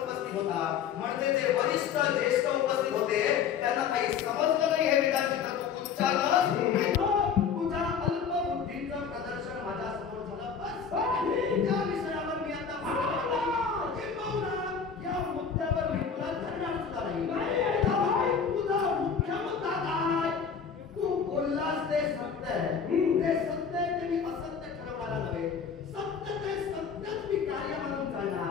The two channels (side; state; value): right; quieter; 6.7 dB